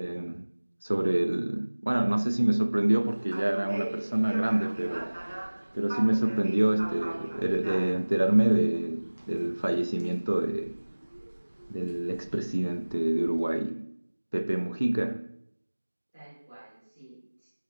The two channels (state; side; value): inverted; both; correlation -1.00